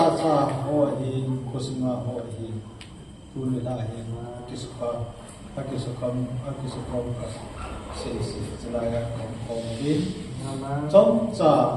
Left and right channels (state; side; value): identical; both; correlation 1.00